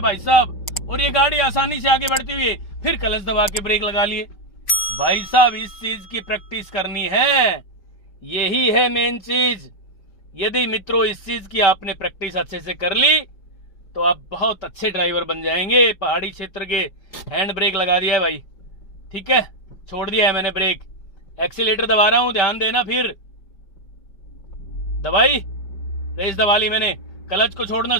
साहब, और ये गाड़ी आसानी से आगे बढ़ती हुई फिर क्लच दबा के ब्रेक लगा लिए। भाई साहब इस चीज की प्रैक्टिस करनी है, यही है मेन चीज। यदि मित्रों इस चीज की आपने प्रैक्टिस अच्छे से कर ली तो आप बहुत अच्छे ड्राइवर बन जाएंगे। पहाड़ी क्षेत्र के हैंड ब्रेक लगा दिया है भाई, ठीक है, छोड़ दिया है मैंने ब्रेक, एक्सीलेटर दबा रहा हूं, ध्यान देना। फिर दबाई, रेस दबा ली मैंने, क्लच को छोड़ना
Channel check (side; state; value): right; late; 5.2 ms